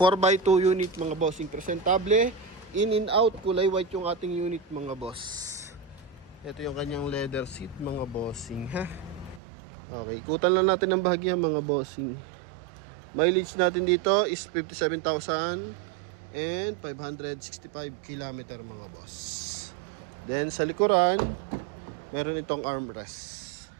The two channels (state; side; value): drops out; left; at 9.4 s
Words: unit mga bossing. Presentable. In and out. Kulay white yung ating unit mga boss. Ito yung kanyang leather seat mga bossing ha. Okay, ikutan lang natin ang bahagya mga bossing. Mileage natin dito is 57,565 km mga boss. Then sa likuran, meron itong armrest.